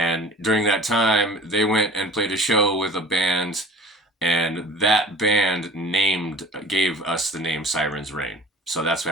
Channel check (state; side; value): normal; both; correlation 0.45